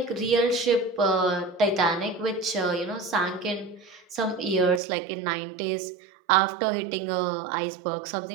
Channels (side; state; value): left; drops out; at 4.8 s